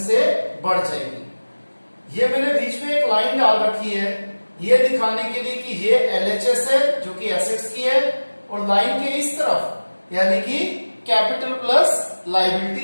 से बढ़ जाएगी। ये मैंने बीच में एक लाइन डाल रखी है ये दिखाने के लिए कि ये एलएचएस है जो कि एसेट्स की है, और लाइन के इस तरफ यानी कि कैपिटल प्लस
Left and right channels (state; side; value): inverted; both; correlation -1.00